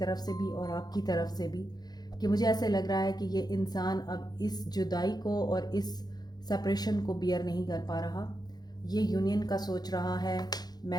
से भी और आपकी तरफ से भी, कि मुझे ऐसे लग रहा है कि ये इंसान अब इस जुदाई को और इस सेपरेशन को बियर नहीं कर पा रहा। ये यूनियन का सोच रहा है,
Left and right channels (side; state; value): right; late; 0.19 ms